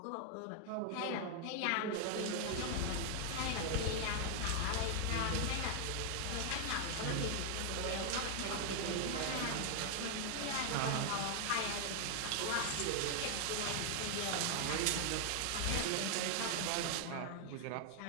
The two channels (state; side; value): different; both; correlation 0.00